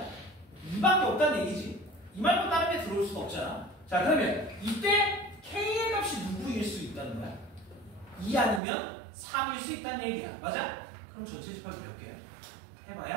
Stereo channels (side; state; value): left; drops out; at 8.6 s